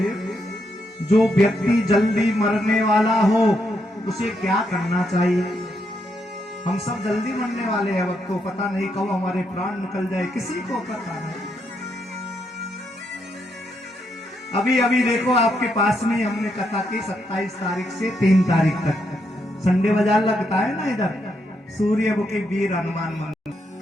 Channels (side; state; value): both; normal; correlation 0.79